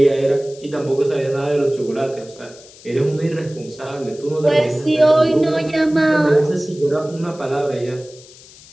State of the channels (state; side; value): noise; left; hiss, 22 dB below the sound